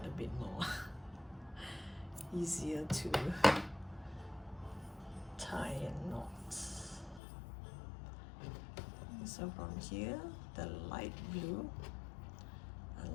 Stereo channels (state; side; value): drops out; right; at 7.2 s